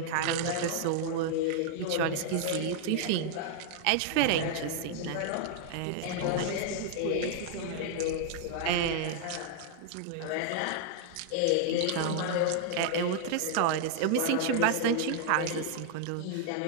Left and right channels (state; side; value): different; both; correlation 0.00